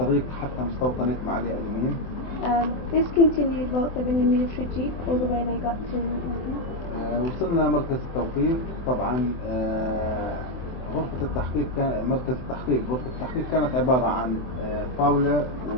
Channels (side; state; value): right; late; 24 ms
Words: حتى مستوطنة معالي أدومين. This continued whilst they were in the military jeep all the way they got to وصلنا مركز التوقيف. طبعا غرفة التحقيق مركز التحقيق غرفة التحقيق كانت عبارة عن طاولة